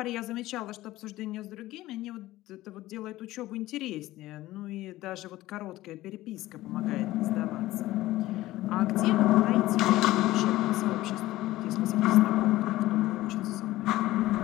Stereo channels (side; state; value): right; quieter; 16.6 dB